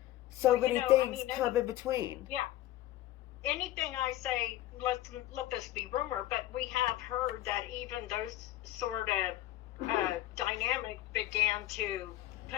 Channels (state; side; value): quieter; right; 14.6 dB